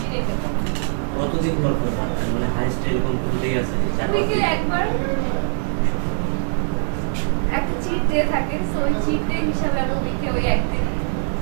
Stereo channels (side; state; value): left; silent; digital silence